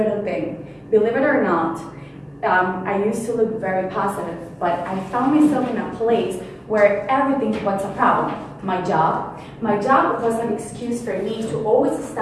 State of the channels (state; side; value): identical; both; correlation 1.00